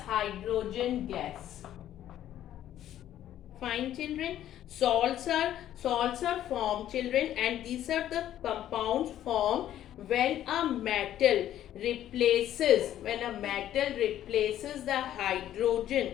gas. Fine, children. Salts are formed, children, and these are the compounds formed when a metal replaces the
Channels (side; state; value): right; quieter; 11.9 dB